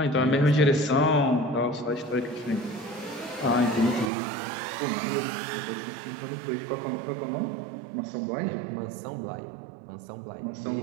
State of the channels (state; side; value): drops out; left; at 4.1 s